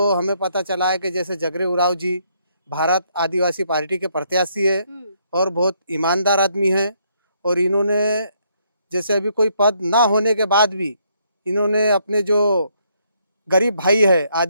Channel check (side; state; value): both; inverted; correlation -0.72